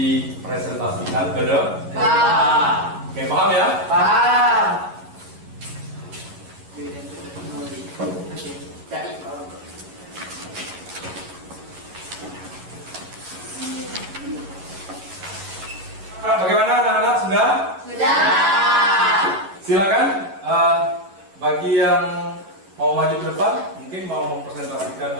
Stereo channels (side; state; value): left; late; 11 ms